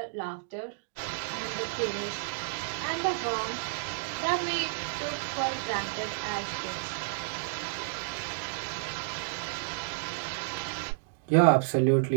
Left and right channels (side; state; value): left; silent; digital silence